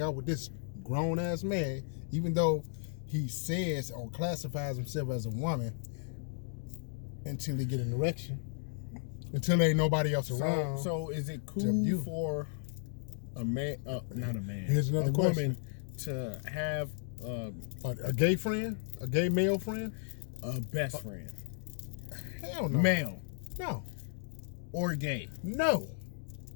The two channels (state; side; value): silent; right; digital silence